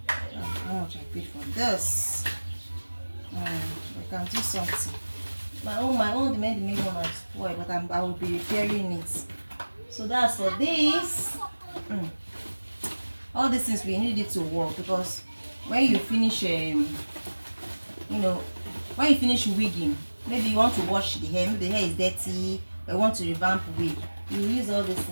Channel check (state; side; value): inverted; both; correlation -1.00